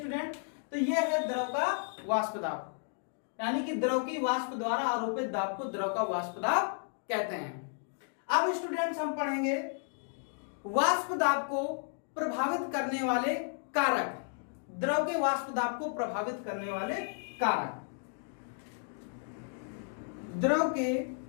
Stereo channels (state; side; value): silent; right; 56 dB below the other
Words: तो यह है द्रव का वाष्प दाब, यानी कि द्रव की वाष्प द्वारा आरोपित दाब को द्रव का वाष्प दाब कहते हैं। अब स्टूडेंट्स हम पढ़ेंगे वाष्प दाब को प्रभावित करने वाले कारक, द्रव के वाष्प दाब को प्रभावित करने वाले कारक। द्रव के